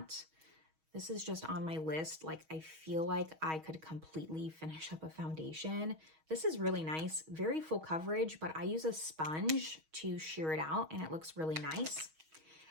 This is just on my list. Like, I feel like I could completely finish up a foundation. This is really nice, very full coverage, but I use a sponge to sheer it out and it looks really nice.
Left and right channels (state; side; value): late; left; 6.3 ms